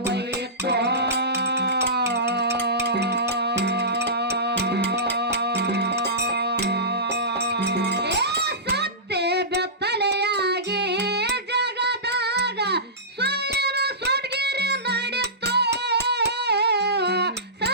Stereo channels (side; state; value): both; normal; correlation -0.20